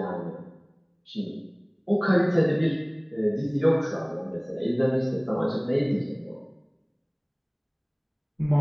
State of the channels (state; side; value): identical; both; correlation 1.00